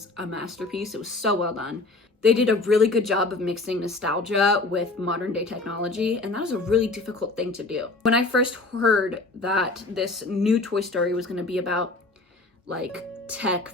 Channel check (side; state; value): right; quieter; 3.3 dB